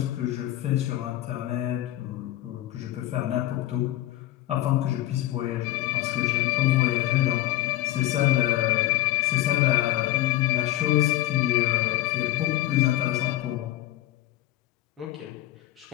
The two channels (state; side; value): quieter; right; 14.7 dB